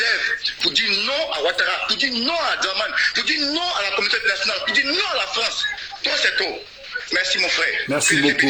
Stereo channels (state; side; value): identical; both; correlation 1.00